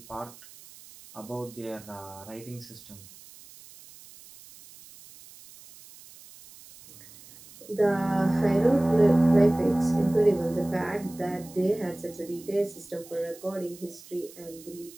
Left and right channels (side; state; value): right; noise; hiss, 20 dB below the sound